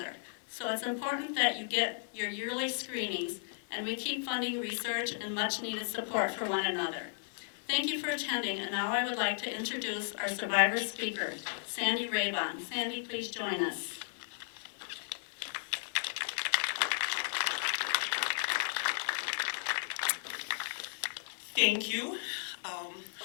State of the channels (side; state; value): right; silent; 55 dB below the other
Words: so it's important that you get your yearly screenings, and we keep funding research and much needed support for one another. Thank you for attending, and now I would like to introduce our survivor speaker, Sandy Raybon. Sandy, please join us. Thank you.